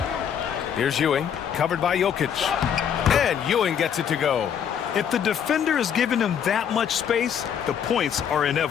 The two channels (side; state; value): right; quieter; 8.3 dB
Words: Here's Ewing, covered by Jokic. And Ewing gets it to go. If the defender is giving him that much space, the points are